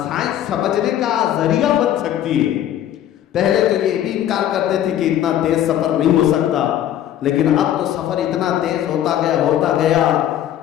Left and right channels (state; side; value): quieter; right; 11.4 dB